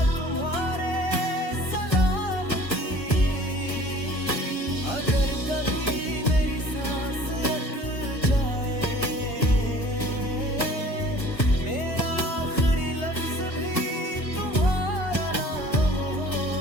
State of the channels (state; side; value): late; right; 1.4 ms